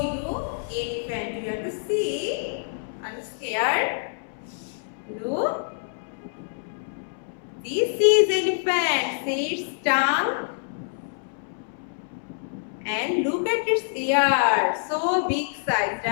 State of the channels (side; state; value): right; silent; 61 dB below the other